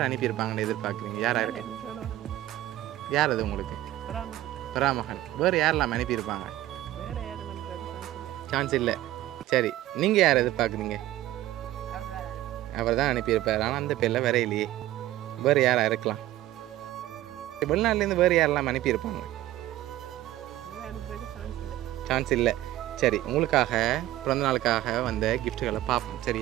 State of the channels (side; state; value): left; quieter; 14.9 dB